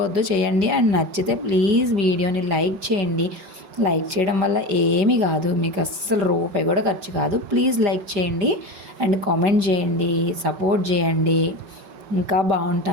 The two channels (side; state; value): left; late; 5.0 ms